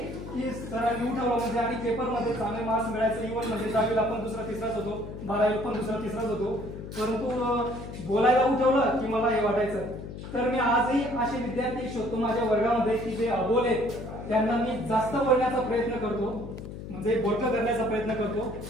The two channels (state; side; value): noise; left; hum, 10 dB below the sound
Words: की सरांनी उठवलं म्हणजे आणि पेपरमध्ये चांगले मार्क्स मिळायचे. इव्हन म्हणजे 10वीला पण दुसरा तिसराच होतो, 12वीला पण दुसरा तिसराच होतो. परंतु बोलायला उठवलं की मला हे वाटायचं. तर मी आजही असे विद्यार्थी शोधतो माझ्या वर्गामध्ये की जे अबोल आहेत, त्यांना मी जास्त बोलण्याचा प्रयत्न करतो, म्हणजे बोलकं करण्याचा प्रयत्न करतो.